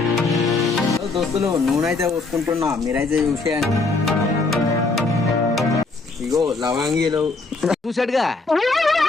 దోస్తులు, నూనె అయితే పోసుకుంటున్నా. మీరైతే చూసేయండి. ఇగో లవంగీలు చూసాడుగా.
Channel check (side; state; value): right; quieter; 3.7 dB